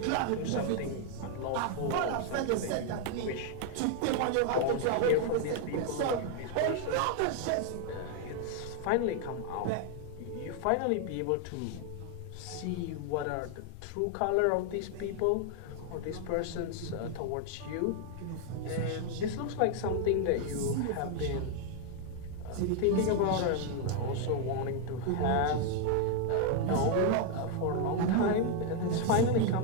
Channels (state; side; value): different; both; correlation 0.00